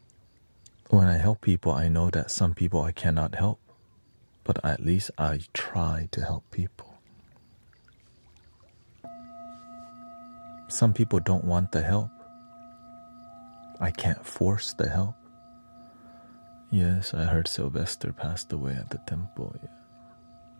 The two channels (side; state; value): both; inverted; correlation -1.00